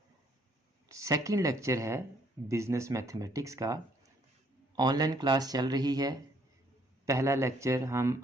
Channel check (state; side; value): normal; both; correlation 0.66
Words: सेकंड लेक्चर है बिज़नेस मैथमेटिक्स का। ऑनलाइन क्लास चल रही है। पहला लेक्चर हम